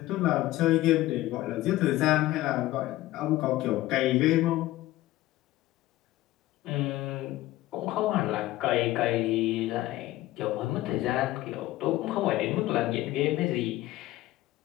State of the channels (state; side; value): quieter; right; 16.5 dB